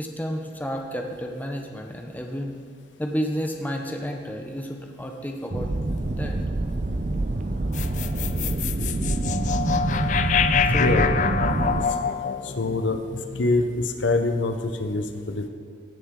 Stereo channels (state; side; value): normal; both; correlation 0.53